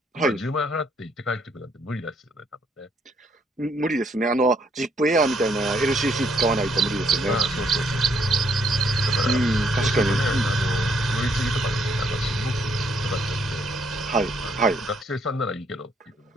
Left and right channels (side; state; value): both; normal; correlation 0.70